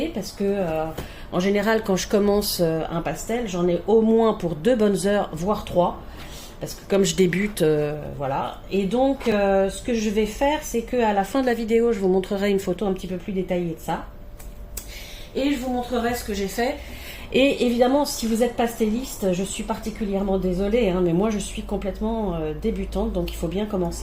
parce que en général, quand je commence un pastel, j'en ai au moins pour 2 bonnes heures, voire 3. Parce que comme je débute, voilà. Et donc, ce que je vais faire, c'est qu'à la fin de la vidéo, je vous montrerai une photo un petit peu plus détaillée de ça. Et je vous montrerai ce que j'ai fait. Et évidemment, si vous êtes pastelliste, je suis particulièrement désolée, mais moi je suis complètement débutante, donc il faut bien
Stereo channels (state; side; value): identical; both; correlation 1.00